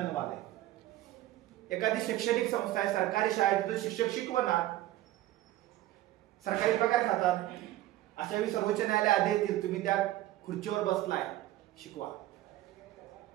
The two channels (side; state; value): left; quieter; 15.2 dB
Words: झालंय. एखादी शैक्षणिक संस्था आहे, सरकारी शाळेत, तिथं शिक्षक शिकवणार, सरकारी पगार खातात. अशा वेळी सर्वोच्च न्यायालय आदेश देईल, तुम्ही त्या खुर्चीवर बसलाय, शिकवा.